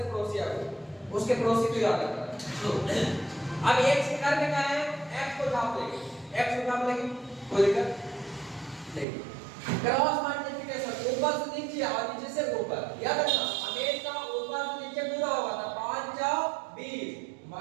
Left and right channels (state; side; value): drops out; left; at 9.1 s